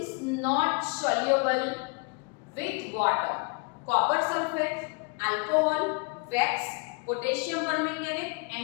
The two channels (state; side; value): quieter; right; 31.9 dB